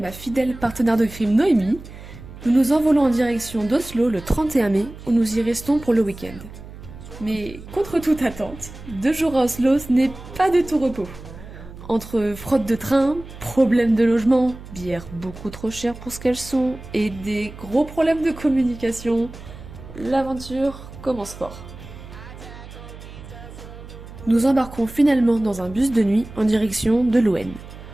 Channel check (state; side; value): noise; right; hum, 15 dB below the sound